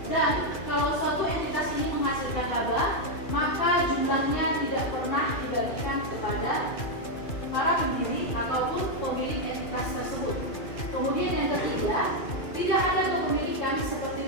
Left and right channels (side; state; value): right; late; 2.4 ms